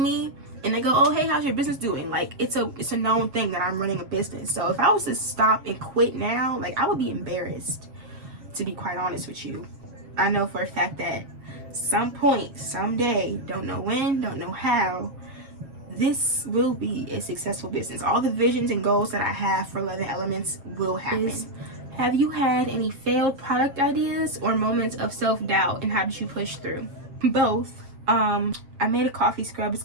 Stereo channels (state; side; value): late; left; 7.4 ms